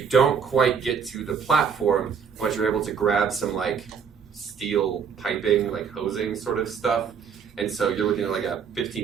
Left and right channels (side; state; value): left; quieter; 6.7 dB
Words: don't quite get to the platform, but you're able to grab some, like, steel piping, like hosing sort of stuff. And so you're looking at like a